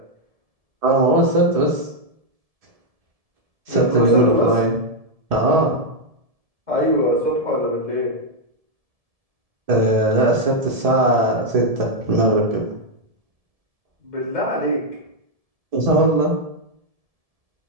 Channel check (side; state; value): left; late; 1.7 ms